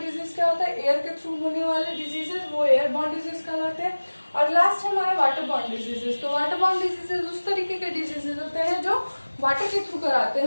क्या होता है, एयर के थ्रू होने वाले डिजीजेस, वो एयरबॉर्न डिजीज कहलाते हैं। और लास्ट है हमारा वाटरबॉर्न डिजीजेस। तो वाटरबॉर्न डिजीजेस उस तरीके के डिजीजेस होते हैं जो वाटर के थ्रू कराते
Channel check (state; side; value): inverted; both; correlation -1.00